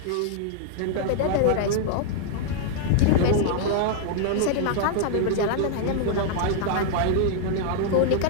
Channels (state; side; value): different; both; correlation -0.01